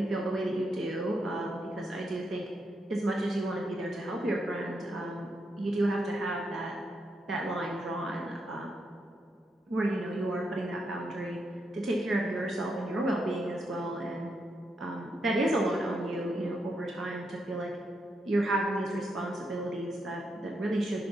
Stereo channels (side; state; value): both; normal; correlation 0.81